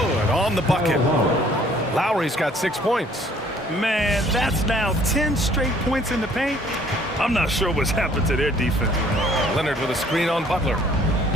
on the bucket. Lowry's got 6 points. Man, that's now 10 straight points in the paint. I'm not sure what's happened to their defense. Leonard with a screen on Butler.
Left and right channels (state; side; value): normal; both; correlation 0.59